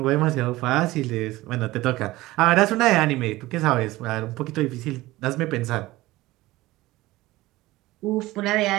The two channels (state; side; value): quieter; left; 18.4 dB